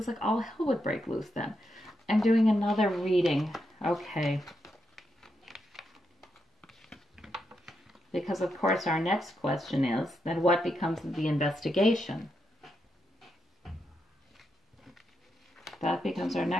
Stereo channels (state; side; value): normal; both; correlation 0.83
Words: like all hell would break loose then. I'm doing another reading. Okay. Because, of course, our next question is, then what becomes of the investigation? That becomes our